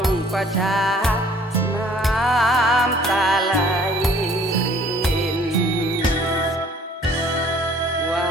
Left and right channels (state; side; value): normal; both; correlation 0.56